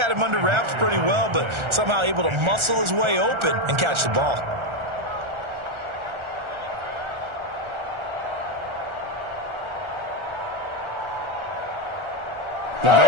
him under wraps pretty well, but somehow able to muscle his way open and catch the ball. The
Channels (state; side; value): late; left; 1.4 ms